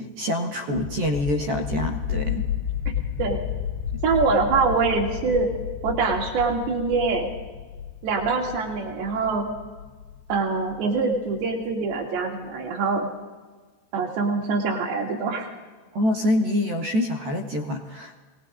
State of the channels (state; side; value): late; left; 14 ms